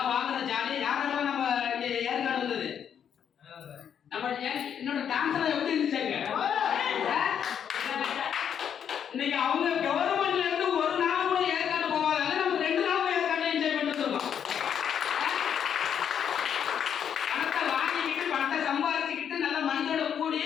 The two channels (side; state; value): right; quieter; 8.4 dB